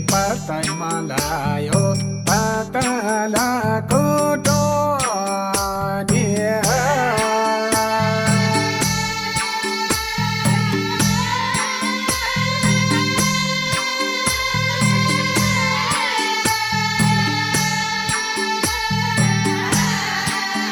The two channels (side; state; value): both; identical; correlation 1.00